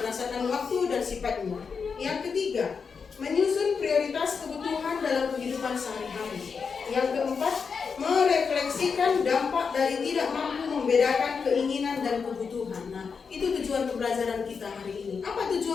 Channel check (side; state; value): right; quieter; 5.6 dB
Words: waktu dan sifatnya. Yang ketiga, menyusun prioritas kebutuhan dalam kehidupan sehari-hari. Yang keempat, merefleksikan dampak dari tidak mampu membedakan keinginan dan kebutuhan. Nah, itu tujuan pembelajaran kita hari ini. Apa